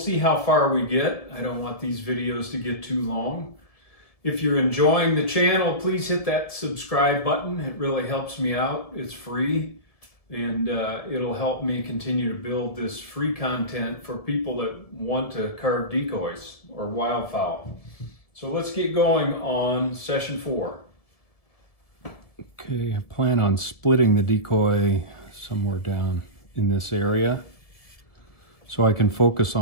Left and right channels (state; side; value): late; right; 1.7 ms